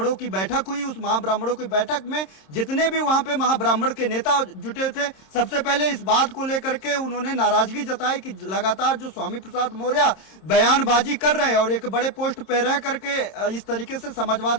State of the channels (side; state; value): right; late; 26 ms